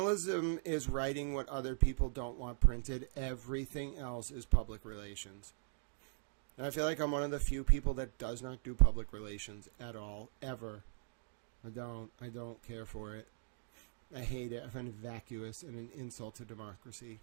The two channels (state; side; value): silent; left; digital silence